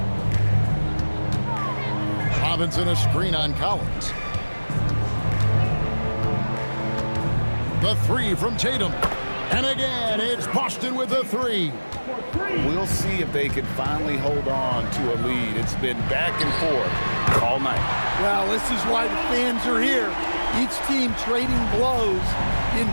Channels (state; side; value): inverted; both; correlation -1.00